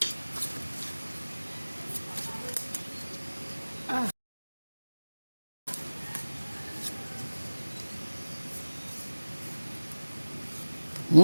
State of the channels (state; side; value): inverted; both; correlation -1.00